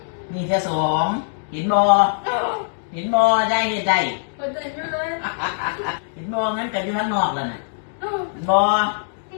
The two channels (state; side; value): silent; right; digital silence